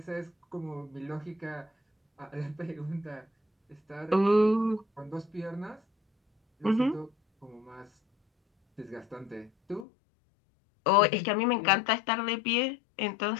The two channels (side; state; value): right; drops out; at 9.9 s